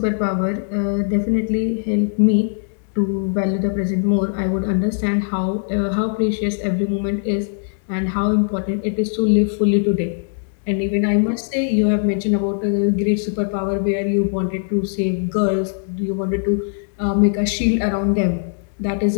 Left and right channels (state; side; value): silent; right; digital silence